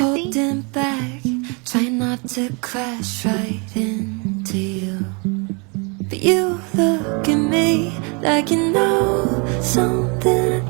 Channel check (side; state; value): left; quieter; 32.8 dB